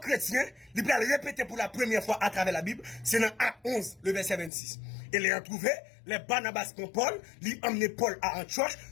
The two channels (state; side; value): drops out; right; at 4.5 s